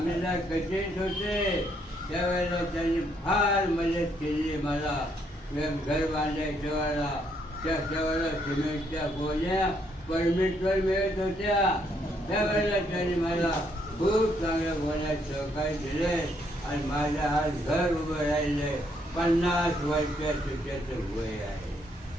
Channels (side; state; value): both; normal; correlation 0.72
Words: कचेत होते त्यावेळेला त्यांनी फार मदत केली मला. घर बांधायच्या वेळेला त्यावेळेला सिमेंटच्या गोण्या परमिटवर मिळत होत्या. त्यावेळेला त्यांनी मला खूप चांगल्या गोण्यात सहकार्य दिले आणि माझ्या आज घर उभं राहिले. 50 वर्षाचं त्याचं वय आहे.